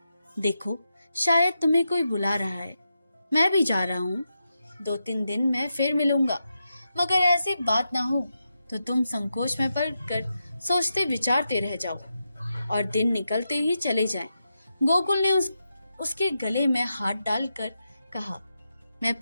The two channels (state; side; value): inverted; both; correlation -0.87